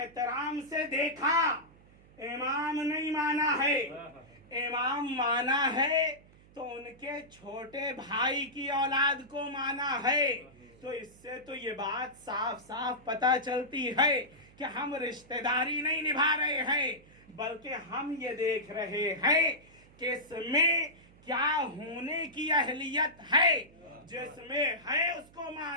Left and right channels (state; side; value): noise; right; hum, 26 dB below the sound